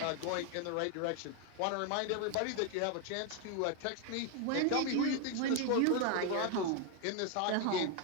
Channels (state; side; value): different; both; correlation 0.01